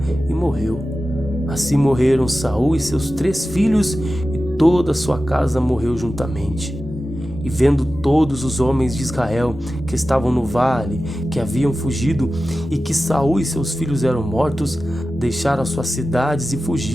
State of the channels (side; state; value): both; normal; correlation 0.94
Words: e morreu. Assim morreram Saul e seus 3 filhos, e toda a sua casa morreu juntamente. E vendo todos os homens de Israel que estavam no vale, que haviam fugido, e que Saul e seus filhos eram mortos, deixaram suas cidades e